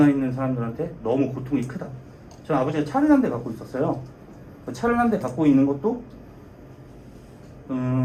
사람들한테 너무 고통이 크다. 저는 아버지가 차를 한 대 갖고 있었어요. 차를 한 대 갖고 있는 것도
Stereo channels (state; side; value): identical; both; correlation 1.00